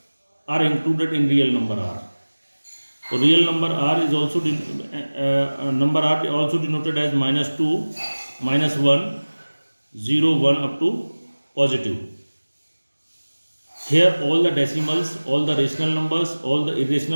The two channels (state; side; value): inverted; both; correlation -1.00